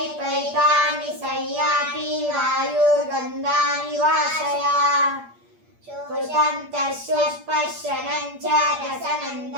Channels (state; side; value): late; left; 8.5 ms